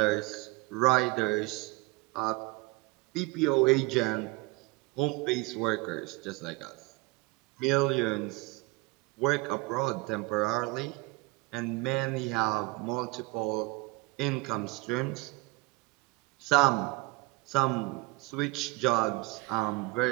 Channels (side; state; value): left; quieter; 23.5 dB